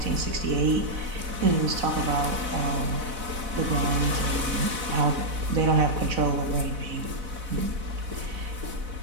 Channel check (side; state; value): left; late; 4.0 ms